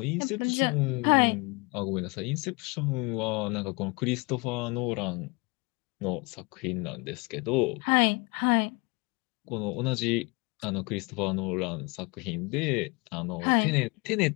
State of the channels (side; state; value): right; quieter; 28.6 dB